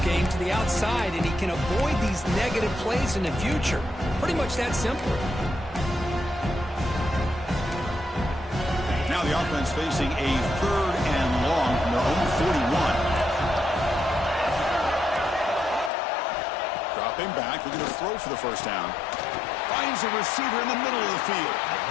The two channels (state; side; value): drops out; right; at 15.9 s